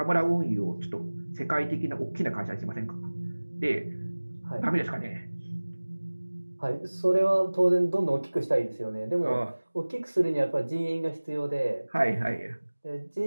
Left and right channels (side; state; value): both; inverted; correlation -1.00